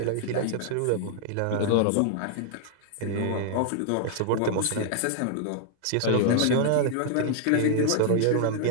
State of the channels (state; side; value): different; both; correlation 0.00